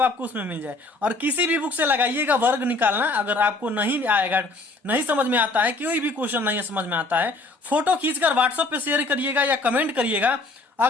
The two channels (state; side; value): quieter; right; 3.2 dB